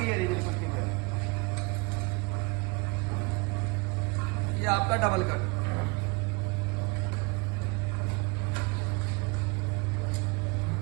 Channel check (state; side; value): quieter; left; 27.6 dB